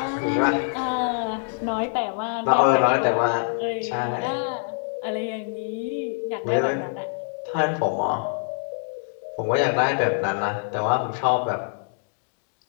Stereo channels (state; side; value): silent; right; 62 dB below the other